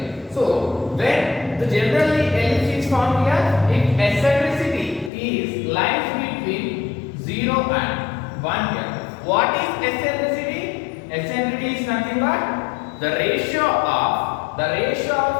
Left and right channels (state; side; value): drops out; right; at 5.1 s